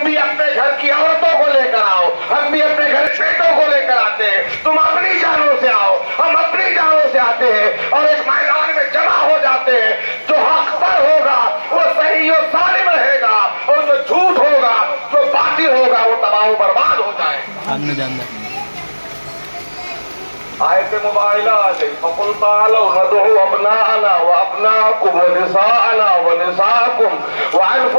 بھی اپنے گھر کی عورتوں کو لے کر آؤ، ہم بھی اپنے گھر بیٹوں کو لے کر آتے ہیں، تم اپنی جانوں سے آؤ، ہم اپنی جانوں سے آتے ہیں اور ایک میدان میں جمع ہو جاتے ہیں، جو حق پر ہوگا وہ صحیح و سالم رہے گا اور جو جھوٹ ہوگا جو باطل ہوگا وہ تباہ و برباد ہو جائے۔ آیت مباہلہ آ گئی، فَقُلْ تَعَالَوْا نَدْعُ أَبْنَاءَنَا وَأَبْنَاءَكُمْ وَنِسَاءَنَا وَنِسَاءَكُمْ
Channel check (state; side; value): inverted; both; correlation -1.00